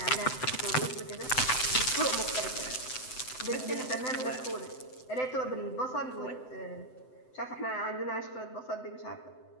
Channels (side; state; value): right; late; 7.8 ms